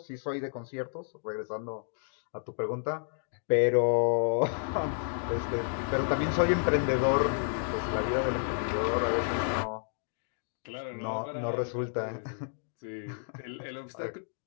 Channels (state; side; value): silent; right; digital silence